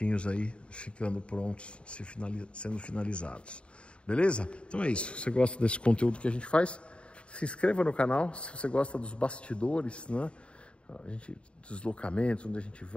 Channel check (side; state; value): right; late; 0.057 ms